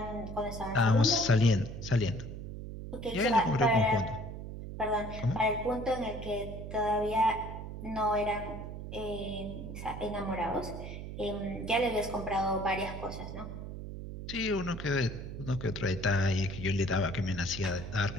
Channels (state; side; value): noise; right; hum, 8 dB below the sound